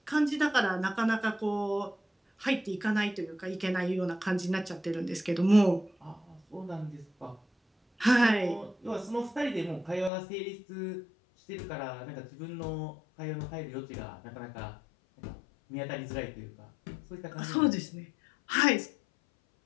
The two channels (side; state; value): right; drops out; at 10.1 s